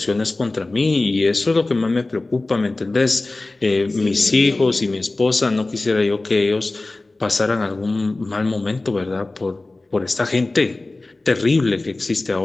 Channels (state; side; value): quieter; right; 3.1 dB